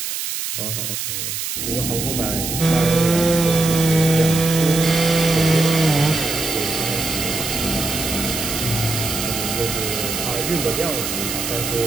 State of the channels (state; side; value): noise; right; hiss, 4 dB below the sound